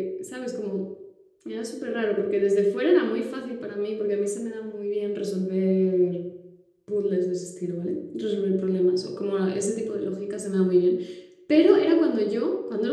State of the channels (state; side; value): identical; both; correlation 1.00